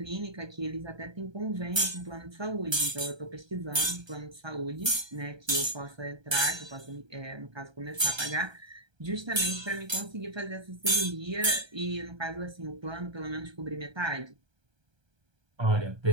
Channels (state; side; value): late; left; 1.3 ms